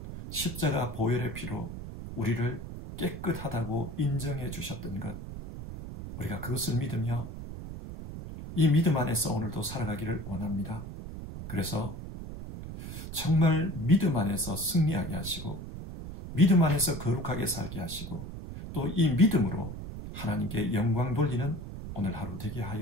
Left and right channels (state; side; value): noise; right; rumble, 9 dB below the sound